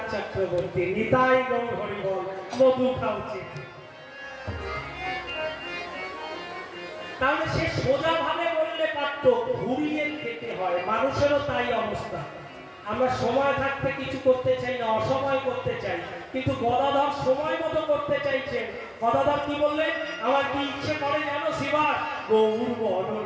চক্রবর্তী, নিতাই গৌর হরি বল, মধু খাওয়াচ্ছে। তাহলে সে সোজা ভাবে বললে পারত, ঘুরিয়ে খেতে হয়। মানুষেরও তাই অবস্থা, আমরা সময় থাকতে কিছু করতে চাই না, অসময় করতে চাই। কিন্তু গদাধর সময় মতো করতে চাইছেন। গদাধর কি বললেন? আমার কি ইচ্ছে করে জানো শিবা? গৌর বরণ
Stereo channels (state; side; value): identical; both; correlation 1.00